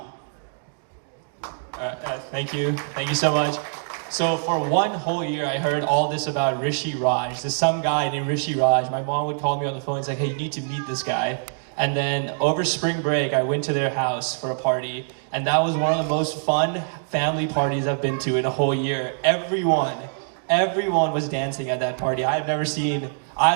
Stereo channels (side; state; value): left; silent; digital silence